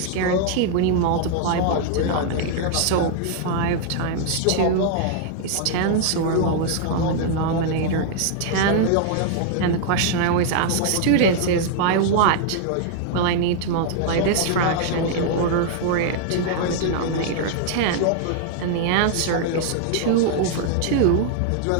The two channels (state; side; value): different; both; correlation -0.01